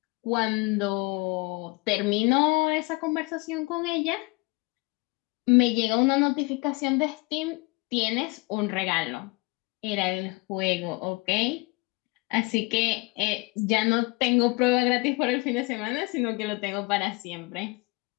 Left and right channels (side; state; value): right; quieter; 26.3 dB